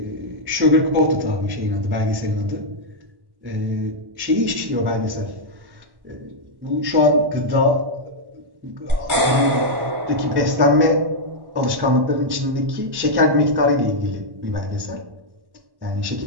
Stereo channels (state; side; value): late; left; 1.1 ms